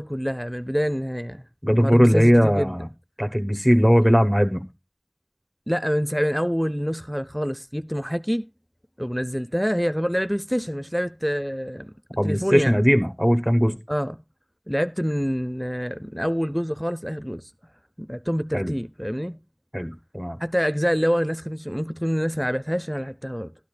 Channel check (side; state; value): both; identical; correlation 1.00